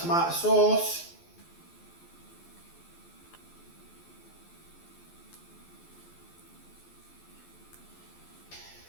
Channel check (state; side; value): late; right; 12 ms